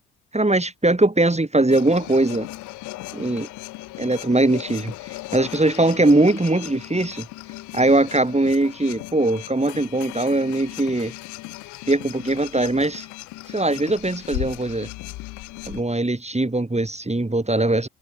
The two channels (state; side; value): normal; both; correlation 0.63